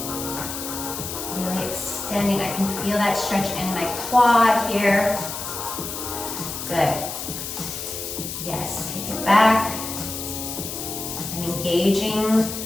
Really extending. I can feel that stretch in my quad here. Good. Yes, take it back. I'm engaging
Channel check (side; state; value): left; noise; hiss, 6 dB below the sound